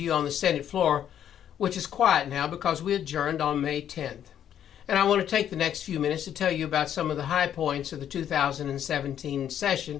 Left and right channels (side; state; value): right; quieter; 9.9 dB